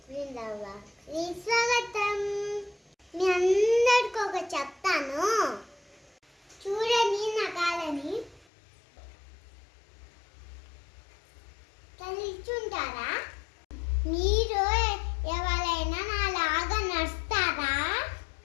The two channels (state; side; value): drops out; right; at 8.5 s